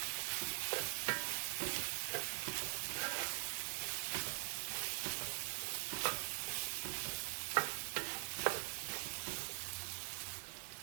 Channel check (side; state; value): left; silent; digital silence